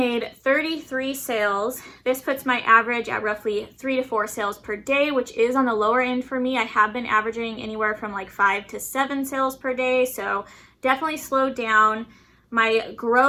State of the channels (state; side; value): identical; both; correlation 1.00